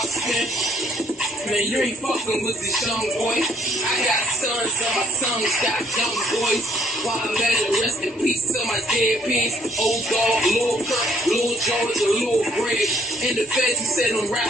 spin. Man, you ain't fucking with this young boy. I got sons and my sons got young boys. While I'm at it, rest in peace to my dead pigs. Old dog, Lil Kirk, Lil George, and Lil Greg. In the feds, he said them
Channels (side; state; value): both; normal; correlation 0.62